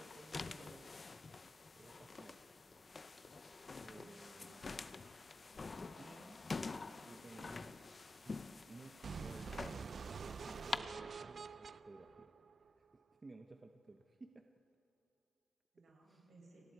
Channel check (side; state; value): both; normal; correlation 0.90